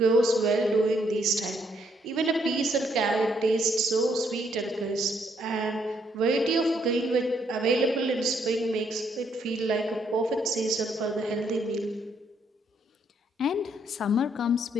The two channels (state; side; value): normal; both; correlation 0.72